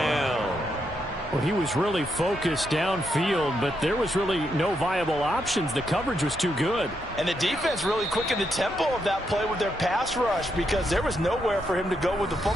Well, he was really focused downfield, but there was really no viable options. The coverage was too good. And the defense really quickened the tempo of that play with their pass rush because there was nowhere for him to go with the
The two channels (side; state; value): both; normal; correlation 0.80